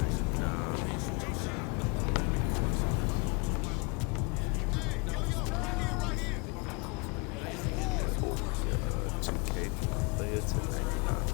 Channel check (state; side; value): quieter; right; 29.5 dB